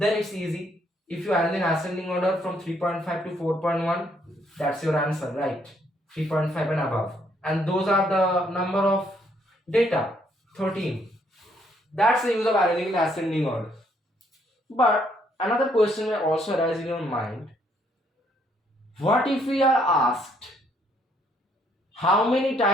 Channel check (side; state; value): both; normal; correlation 0.69